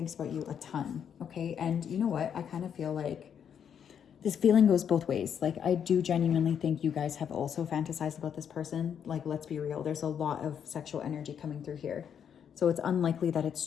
about you a ton, okay? And you know what? I kind of feel like this feeling goes both ways. Like, I do genuinely think you guys have also fantasized about this person. Like, let's be real. There's a lot of sexual energy coming through here. So it's unlikely that it's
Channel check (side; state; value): right; quieter; 8.2 dB